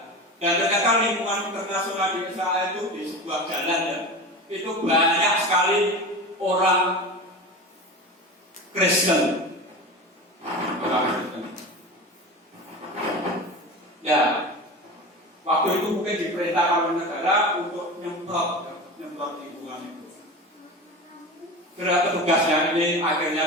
Dan ternyata lingkungan internasional di Israel itu di sebuah jalan ya, itu banyak sekali orang Kristen. Ya, waktu itu mungkin diperintahkan oleh negara untuk nyemprot lingkungan itu. Karena petugasnya ini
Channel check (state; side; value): normal; both; correlation 0.29